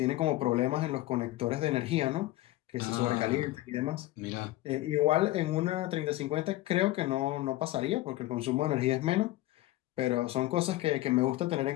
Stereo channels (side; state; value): right; quieter; 16.8 dB